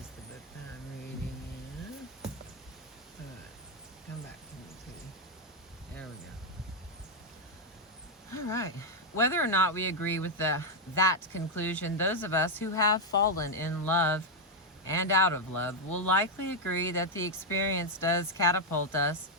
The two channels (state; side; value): normal; both; correlation 0.01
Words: the book that I'm reading in. Alright, come back to me, too. There we go. Alright. Whether or not we agree with that conclusion, those of us who have fallen in love and out of love will likely agree that the experience does catapult us